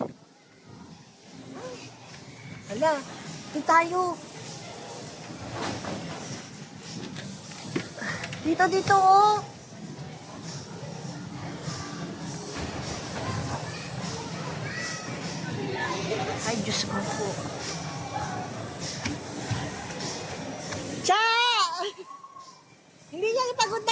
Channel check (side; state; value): both; identical; correlation 1.00